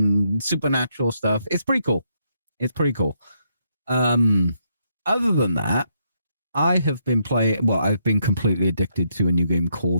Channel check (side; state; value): both; inverted; correlation -0.76